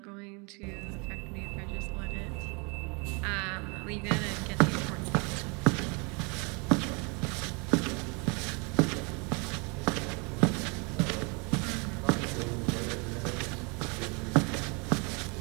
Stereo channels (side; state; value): left; quieter; 31.8 dB